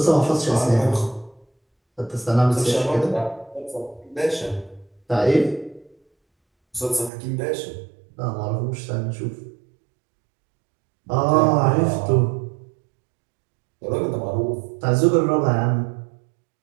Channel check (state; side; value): drops out; left; at 7.1 s